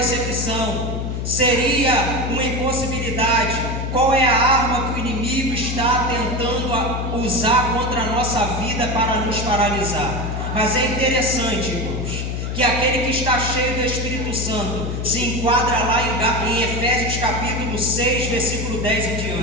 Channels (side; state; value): left; noise; hum, 3 dB below the sound